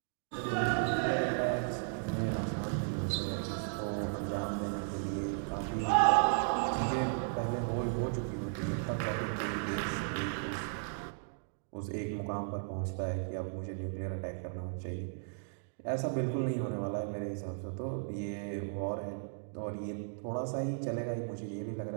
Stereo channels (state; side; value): silent; left; digital silence